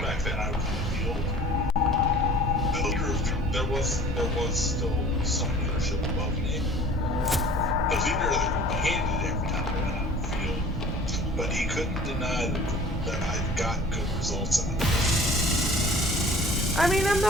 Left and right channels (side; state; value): both; normal; correlation 0.47